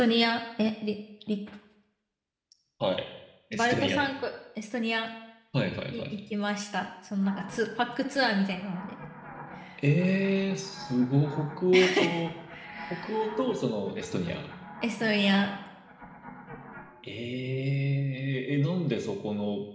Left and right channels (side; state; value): both; identical; correlation 1.00